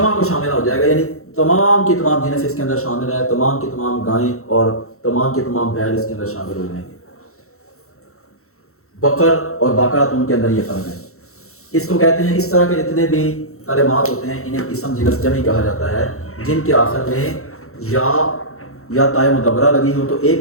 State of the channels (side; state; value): right; late; 0.63 ms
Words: کو شامل ہو جائے گا، یعنی تمام کی تمام جنس اس کے اندر شامل ہے، تمام کی تمام گائیں اور تمام کے تمام بیل اس کے اندر شامل ہو جائیں گے۔ بقر اور بقرۃ ان کے اندر یہ فرق ہے۔ اس کو کہتے ہیں، اس طرح کے جتنے بھی کلمات ہوتے ہیں انہیں اسم جنس جمع کہا جاتا ہے، جن کے آخر میں یا تائے مدبرہ لگی ہو تو ایک